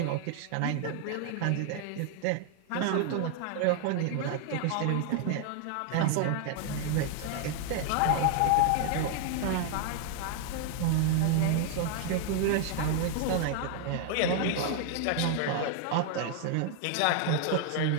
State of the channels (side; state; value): both; different; correlation 0.00